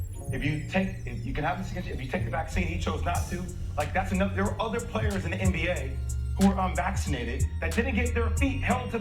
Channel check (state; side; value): identical; both; correlation 1.00